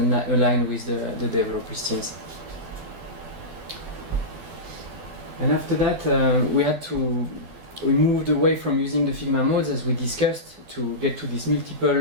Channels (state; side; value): late; left; 12 ms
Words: aligned with the developers teams. And after that, we moved away from using the Figma modes as we discussed to get to these multiple